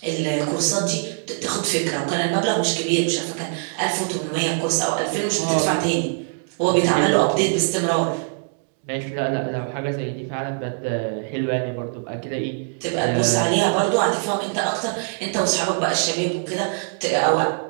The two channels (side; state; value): left; silent; 64 dB below the other